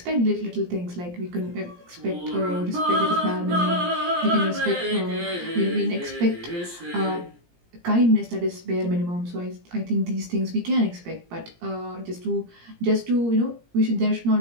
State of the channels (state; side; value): late; left; 17 ms